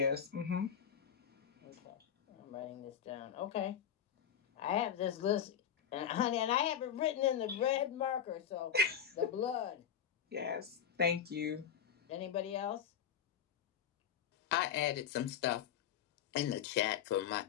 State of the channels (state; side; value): quieter; right; 8.7 dB